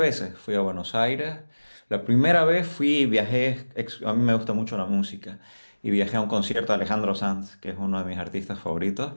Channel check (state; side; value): inverted; both; correlation -1.00